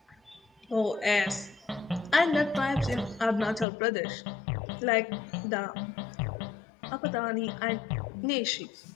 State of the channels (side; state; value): right; drops out; at 3.7 s